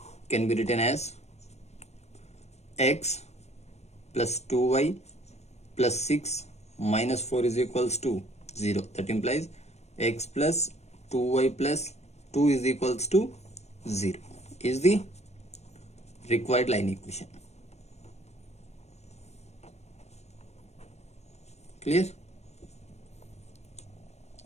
Can be written as x plus 2y plus 6 minus 4 is equals to 0. That implies x plus 2y plus 2 is equals to 0 is the required line equation. Clear?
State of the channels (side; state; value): right; late; 0.32 ms